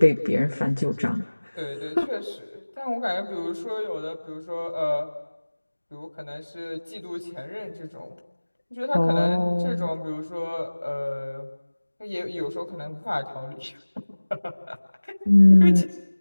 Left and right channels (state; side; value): inverted; both; correlation -1.00